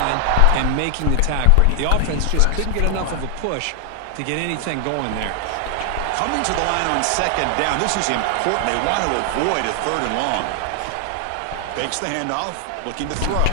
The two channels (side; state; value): both; different; correlation 0.00